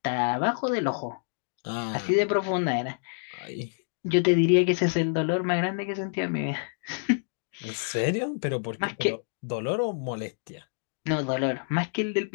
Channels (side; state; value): right; silent; digital silence